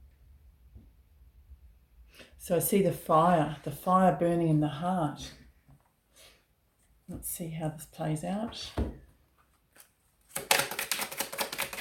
So I see the fire burning in the heart. Let's see how this plays out.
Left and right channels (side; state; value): both; identical; correlation 1.00